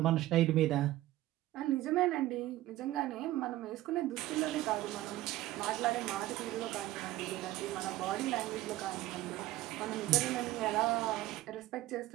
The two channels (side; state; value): left; quieter; 15.9 dB